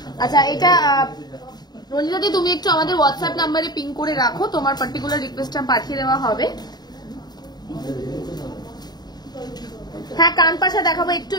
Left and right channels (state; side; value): late; right; 0.20 ms